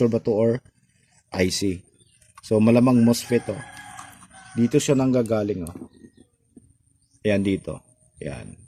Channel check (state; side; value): identical; both; correlation 1.00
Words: ba to or IC. So malamang MOSFET dito siya nanggagaling Ayan dito. Ayan.